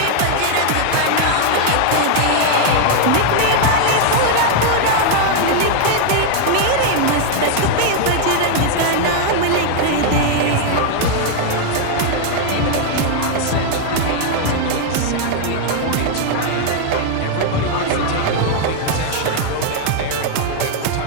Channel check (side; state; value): both; different; correlation 0.00